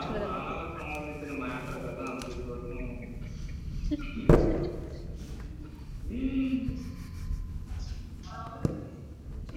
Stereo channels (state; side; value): identical; both; correlation 1.00